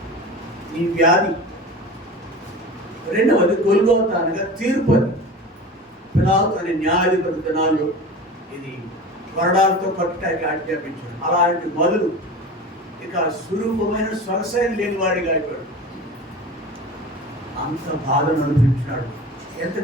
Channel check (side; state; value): both; normal; correlation 0.34